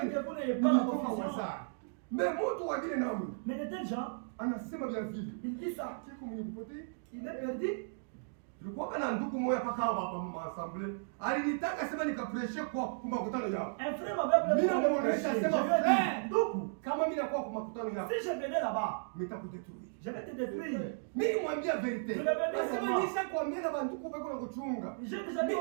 Mais mtu wa vile namu. Mais de tels gens, anasema vya vile. Il dit ça. Il est perdu. Tulikuwa kana ndugu moja paka hapa assemblée. Alinitaka sema nikapreshe kwa makutano yao. Un frère m'avait appelé. Mimi namuonesha sema frère. Ndugu, kama mimi nakuwa kwa makutano yao. Si je venais là-bas, nitakudetruire. Je vais te détruire. Mimi mwambia verite. Nasema nisha kuambia na banduku bako na kuchunga. J'ai déjà dit.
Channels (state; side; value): silent; left; digital silence